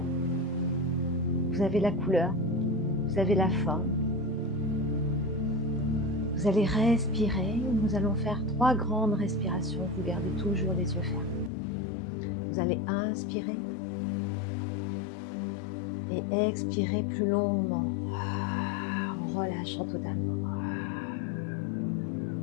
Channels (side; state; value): right; drops out; at 11.5 s